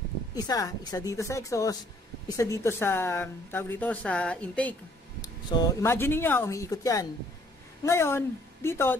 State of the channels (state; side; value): normal; both; correlation 0.62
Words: isa dito sa exhaust, isa dito sa, tawag dito, sa intake. So imagine niyo umiikot yan. Ngayon, dito,